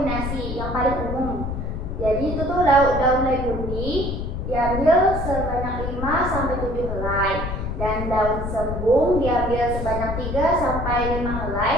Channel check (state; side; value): noise; left; rumble, 4 dB below the sound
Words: yang paling umum. Jadi itu tuh daun legundi diambil sebanyak 5-7 helai, dan daun sembung diambil sebanyak 3-5